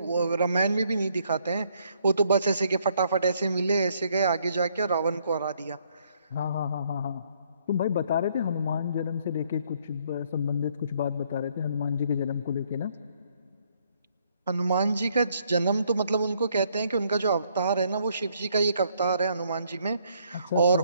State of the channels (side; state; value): both; inverted; correlation -0.68